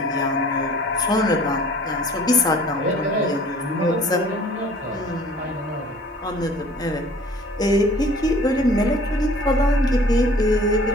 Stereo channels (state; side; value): normal; both; correlation 0.50